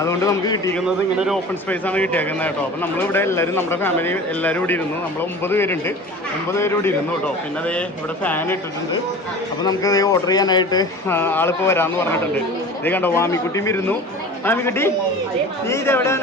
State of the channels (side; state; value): both; normal; correlation 0.38